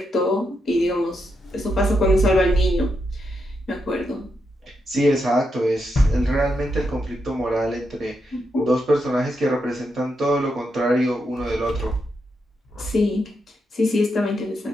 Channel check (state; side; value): normal; both; correlation 0.83